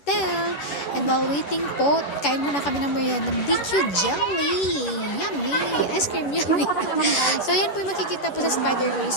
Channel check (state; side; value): late; right; 11 ms